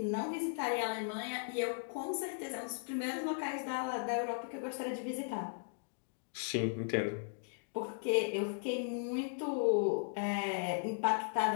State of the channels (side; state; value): right; silent; digital silence